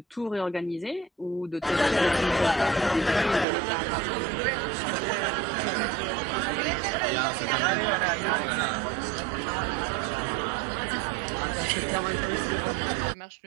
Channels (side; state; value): left; drops out; at 3.5 s